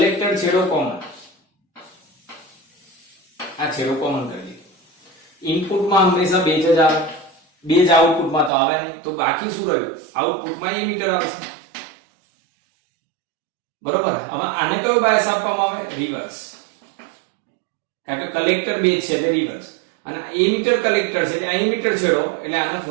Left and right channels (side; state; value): left; drops out; at 8.5 s